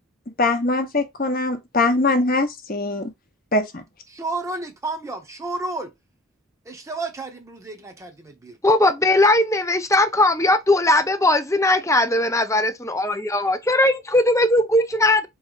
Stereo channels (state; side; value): normal; both; correlation 0.45